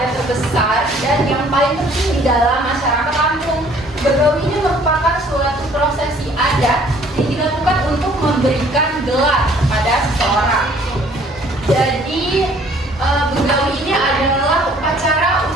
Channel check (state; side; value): normal; both; correlation 0.57